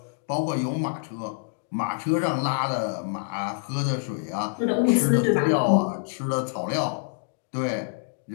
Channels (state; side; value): silent; right; digital silence